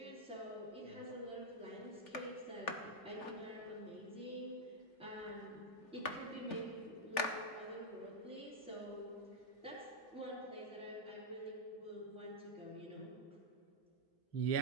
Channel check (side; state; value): right; late; 3.4 ms